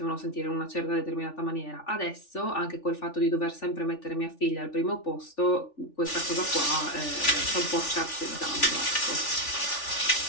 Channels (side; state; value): right; late; 3.4 ms